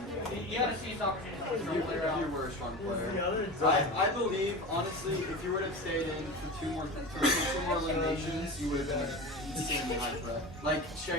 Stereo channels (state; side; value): normal; both; correlation 0.28